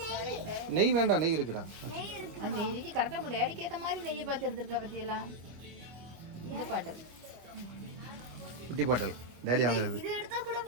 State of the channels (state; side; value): late; left; 25 ms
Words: நெய் வேண்டாம், நெய் இருக்குடா. குட்டி பாட்டல் டேடி வாங்குறது.